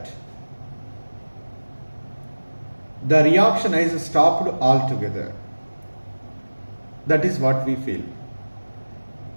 the reaction is stopped altogether. That is what we feel.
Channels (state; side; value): inverted; both; correlation -1.00